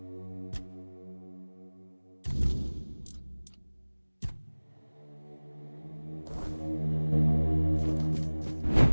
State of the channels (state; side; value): inverted; both; correlation -1.00